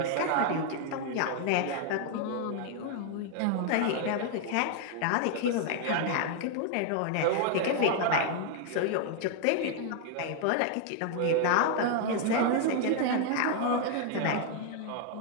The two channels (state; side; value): different; both; correlation 0.00